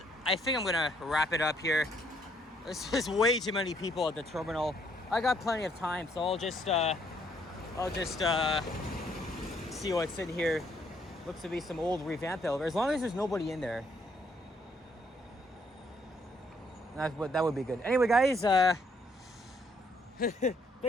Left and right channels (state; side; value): normal; both; correlation 0.69